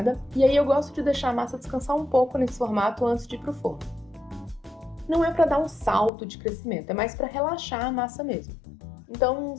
e aí eu gosto de deixar a massa descansar um pouco nesse formato antes de ir para o forno. Não é para dar um salto de crescimento, é mais para relaxar a massa mesmo. Então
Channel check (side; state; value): right; drops out; at 6.1 s